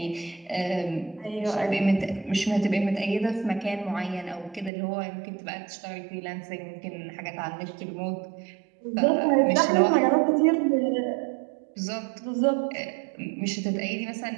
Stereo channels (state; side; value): drops out; left; at 4.7 s